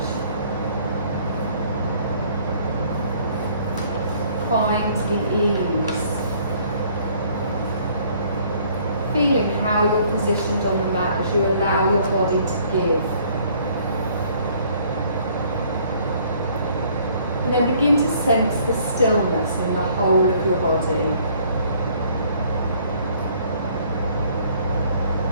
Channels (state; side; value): inverted; both; correlation -0.60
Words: Find the ease. Feeling how you're positioned on the mat as you allow your body to give. And then begin to sense the stillness in the whole of your body.